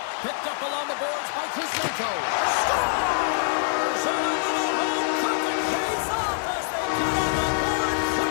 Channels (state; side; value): silent; right; 61 dB below the other